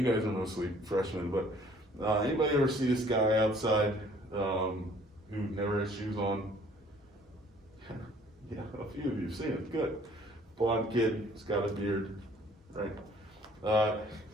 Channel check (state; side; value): normal; both; correlation 0.57